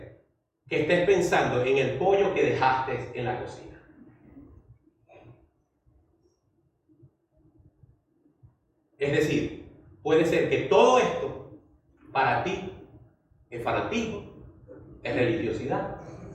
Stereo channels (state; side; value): identical; both; correlation 1.00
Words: que estés pensando en el pollo que dejaste en la cocina. Es decir, puede ser que todo esto para ti es fanatismo, es religiosidad,